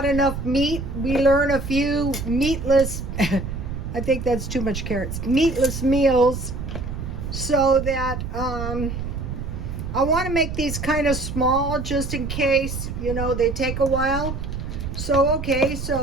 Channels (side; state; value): right; noise; rumble, 6 dB below the sound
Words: enough meat, we learn a few meatless I think that's too much carrots. Meatless meals, so that I want to make these kind of small just in case, you know, they take a while. So, okay,